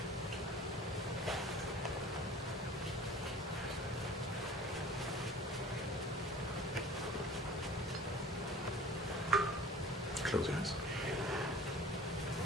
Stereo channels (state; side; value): normal; both; correlation 0.43